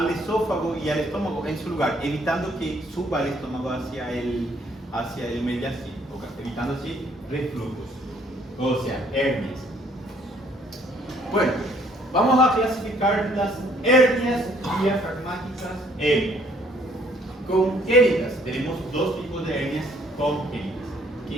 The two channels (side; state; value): both; normal; correlation 0.63